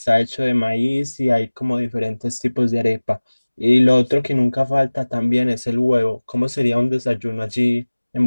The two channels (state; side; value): inverted; both; correlation -1.00